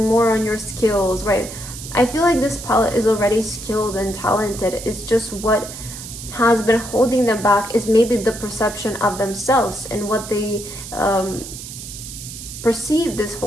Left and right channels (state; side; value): noise; right; hiss, 11 dB below the sound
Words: more on your skills, right? I feel like this palette is already skilled and talented. It's just what has been holding them back is maybe the perception of themselves and what they perceive this